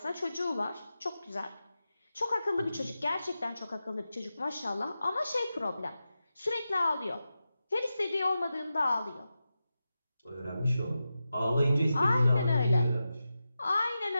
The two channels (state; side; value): inverted; both; correlation -0.91